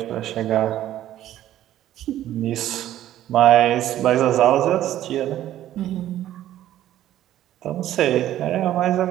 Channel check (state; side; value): quieter; left; 12.8 dB